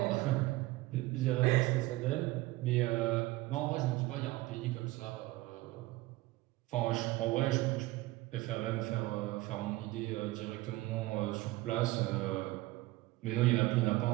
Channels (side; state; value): left; quieter; 19.1 dB